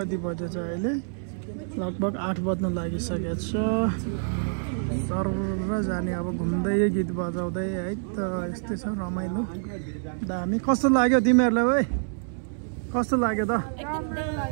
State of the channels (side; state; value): left; silent; 60 dB below the other